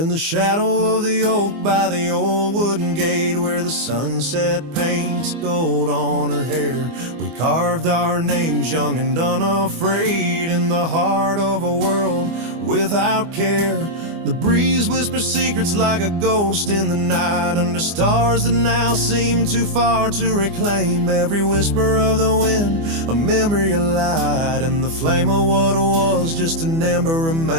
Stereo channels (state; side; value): late; left; 24 ms